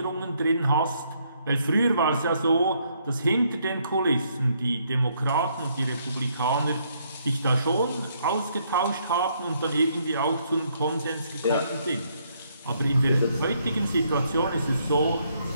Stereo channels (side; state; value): both; inverted; correlation -0.71